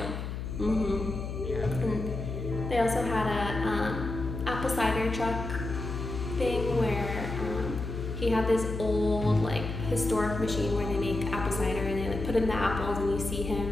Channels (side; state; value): left; noise; hum, 5 dB below the sound